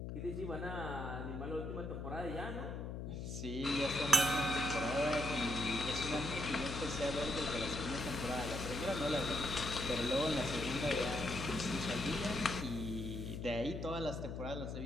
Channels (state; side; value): noise; left; hum, 5 dB below the sound